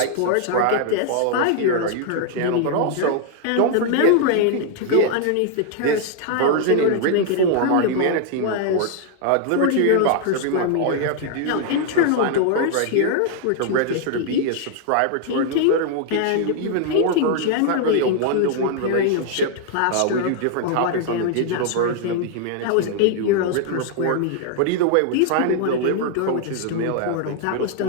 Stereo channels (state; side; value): different; both; correlation 0.00